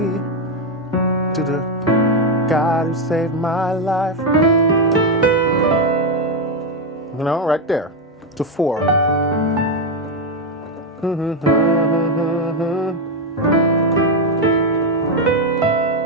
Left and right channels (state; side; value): normal; both; correlation 0.06